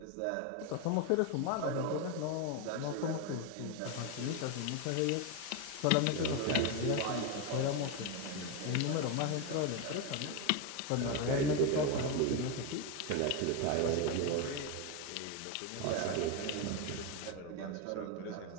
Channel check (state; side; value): different; both; correlation 0.02